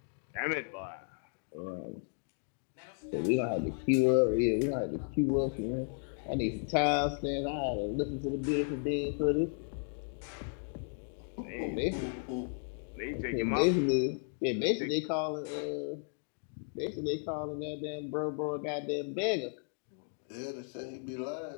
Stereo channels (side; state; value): right; silent; 55 dB below the other